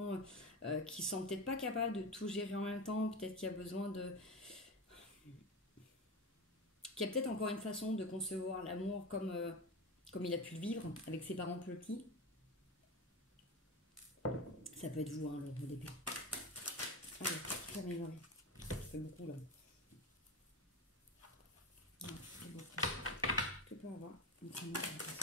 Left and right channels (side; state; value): both; normal; correlation 0.22